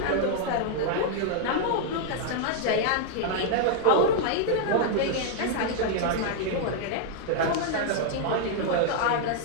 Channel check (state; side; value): different; both; correlation -0.01